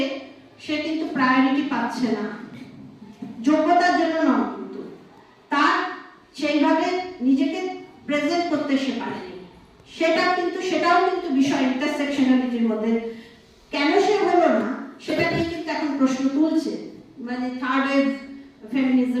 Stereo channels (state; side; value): identical; both; correlation 1.00